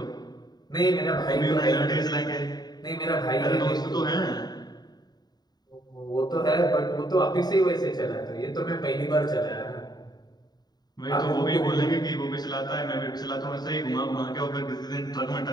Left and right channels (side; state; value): right; late; 0.20 ms